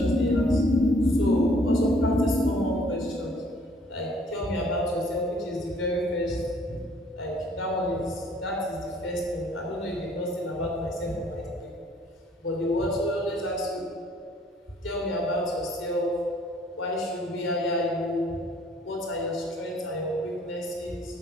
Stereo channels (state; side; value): normal; both; correlation 0.59